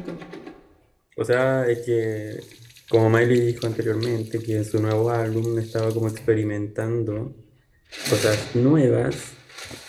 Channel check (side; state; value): both; identical; correlation 1.00